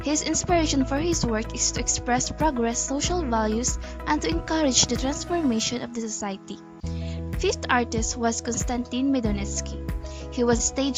His inspiration for his work is to express progress, social values, and to encourage the transformation of the society. Fifth artist was Konstantin Medonetsky. He was a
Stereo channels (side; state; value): both; identical; correlation 1.00